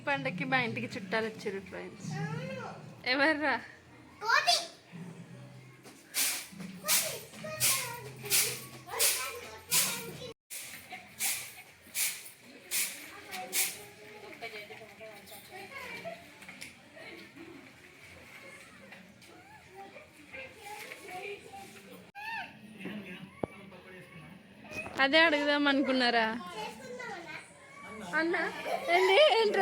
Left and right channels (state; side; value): identical; both; correlation 1.00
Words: పండగకి మా ఇంటికి చుట్టాలు వచ్చారు ఫ్రెండ్స్. ఎవర్రా? కోటి అదే అడుగుదాం అనుకున్నారా అన్న? ఏంటి